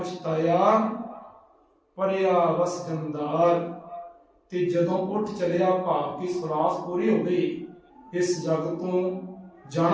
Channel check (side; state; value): both; identical; correlation 1.00